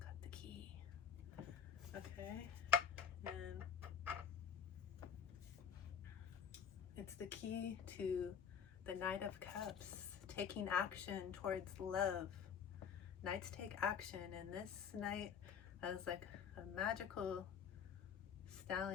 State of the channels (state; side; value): quieter; right; 7.5 dB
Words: got the key. Okay, and it's the key to the Knight of Cups, taking action towards love. Knights take action, and this knight has like a magical